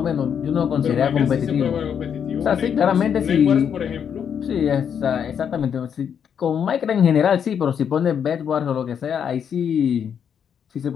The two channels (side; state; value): right; quieter; 7.9 dB